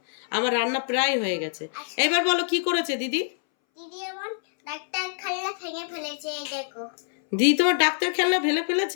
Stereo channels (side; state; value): right; silent; 61 dB below the other